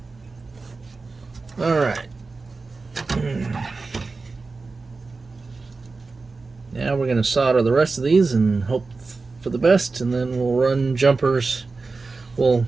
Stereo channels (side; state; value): left; quieter; 4.0 dB